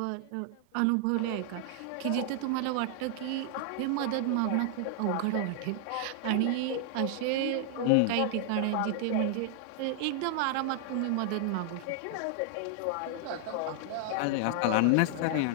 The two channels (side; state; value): both; different; correlation -0.01